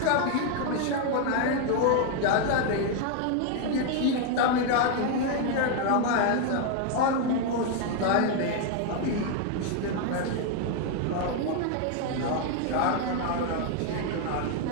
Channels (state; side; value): different; both; correlation 0.00